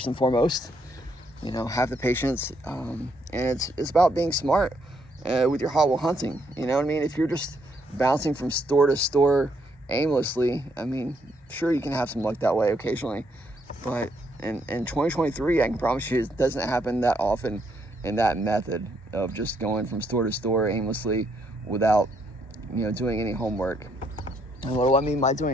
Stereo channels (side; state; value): both; normal; correlation 0.73